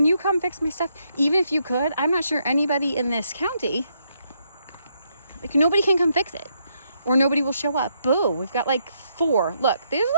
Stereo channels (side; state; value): both; inverted; correlation -0.76